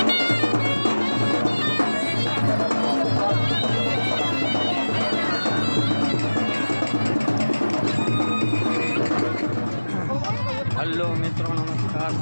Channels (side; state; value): both; inverted; correlation -1.00